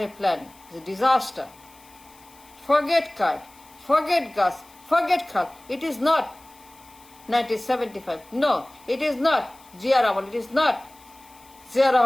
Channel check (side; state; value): left; noise; hiss, 26 dB below the sound